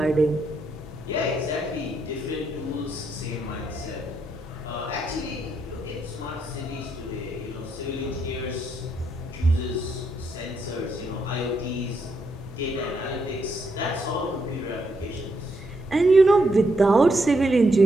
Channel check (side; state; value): both; normal; correlation 0.78